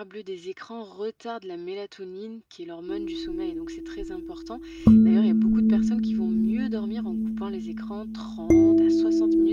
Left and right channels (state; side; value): identical; both; correlation 1.00